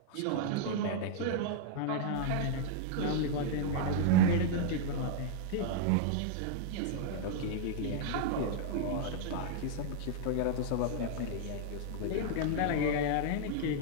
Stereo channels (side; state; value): both; different; correlation -0.01